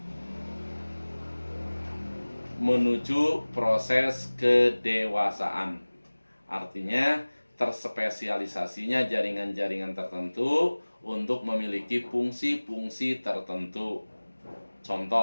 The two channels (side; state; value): both; inverted; correlation -1.00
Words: menuju proses kedewasaan. Artinya terspesialisasinya jaringan-jaringan tertentu untuk memiliki fungsi-fungsi tertentu.